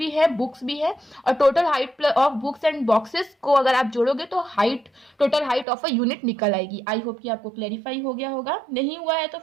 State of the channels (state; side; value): drops out; left; at 5.7 s